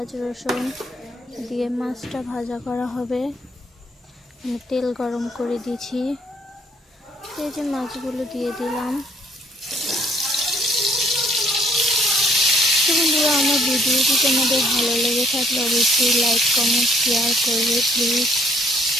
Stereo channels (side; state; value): both; normal; correlation 0.64